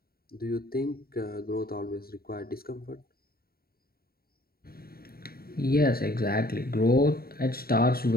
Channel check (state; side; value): late; right; 0.44 ms